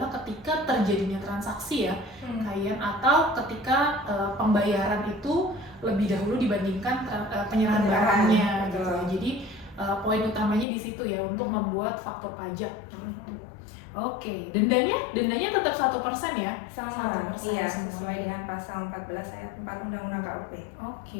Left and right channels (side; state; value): right; drops out; at 10.7 s